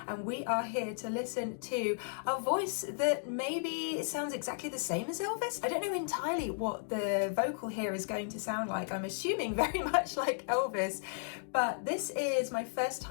And we are here to listen to a voice that maybe sounds exactly the same as Elvis. I don't know entirely what the vocal here is going to sound like. I'm assuming very much like Elvis, but this is my first time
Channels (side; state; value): right; silent; digital silence